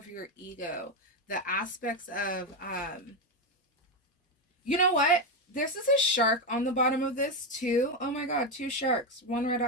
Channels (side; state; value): both; normal; correlation 0.09